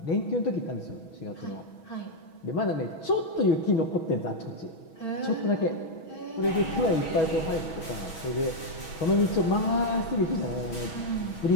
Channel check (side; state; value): right; late; 6.2 ms